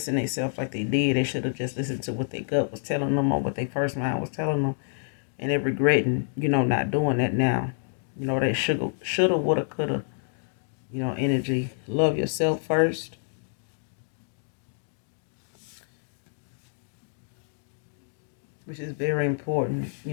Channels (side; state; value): right; silent; digital silence